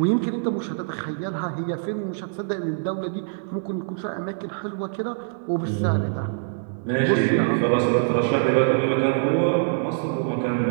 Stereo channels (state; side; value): silent; left; 60 dB below the other